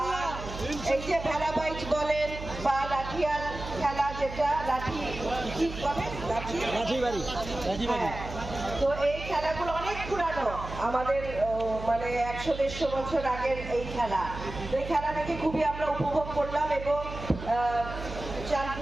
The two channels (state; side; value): noise; right; hum, 10 dB below the sound